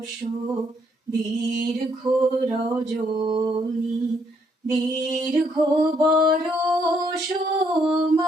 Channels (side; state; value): both; normal; correlation 0.71